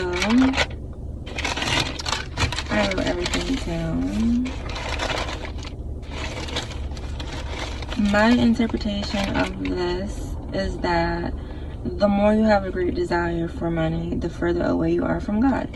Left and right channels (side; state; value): both; identical; correlation 1.00